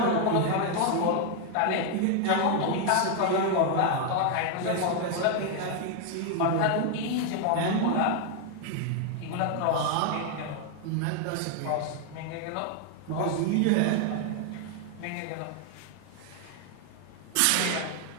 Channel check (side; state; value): both; different; correlation 0.00